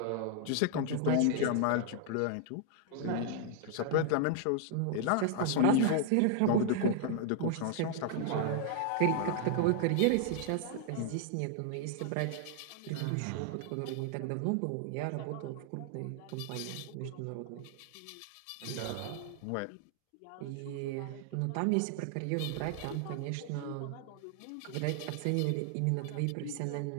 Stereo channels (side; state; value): both; different; correlation 0.00